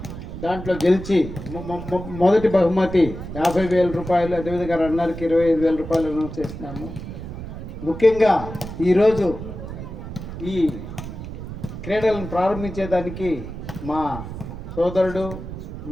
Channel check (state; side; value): noise; right; rumble, 9 dB below the sound